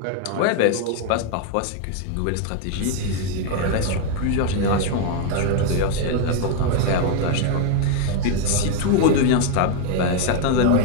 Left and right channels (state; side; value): different; both; correlation 0.00